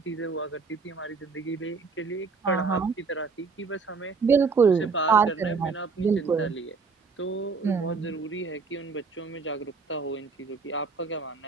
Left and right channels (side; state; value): left; quieter; 4.8 dB